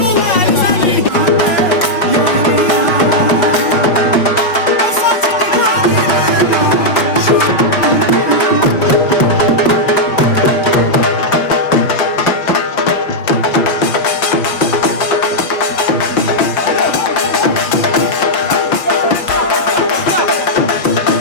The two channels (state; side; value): late; right; 5.2 ms